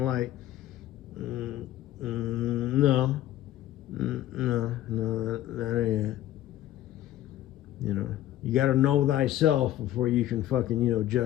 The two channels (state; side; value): quieter; right; 13.6 dB